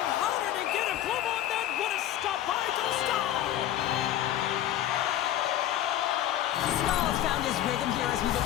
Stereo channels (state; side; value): quieter; right; 12.3 dB